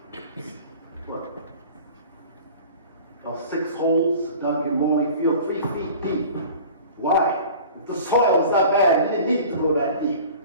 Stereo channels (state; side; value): inverted; both; correlation -0.43